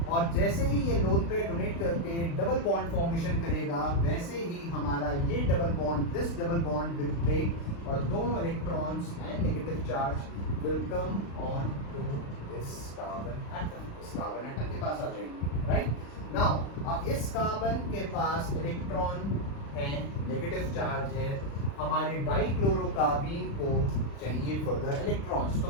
और जैसे ही ये लोन पेयर डोनेट करके डबल बॉन्ड फॉर्मेशन करेगा, वैसे ही हमारा ये double bond, this double bond will break और दोनों electrons and negative charge will come on to this carbon atom. इस कार्बन एटम के पास आ जाएंगे, राइट? नाउ अब इस कार्बन के पास इलेक्ट्रॉन है, नेगेटिव चार्ज है, हमारे डाइक्लोरोकार्बीन को चाहिए फर्दर इलेक्ट्रॉन्स। तो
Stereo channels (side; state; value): right; late; 35 ms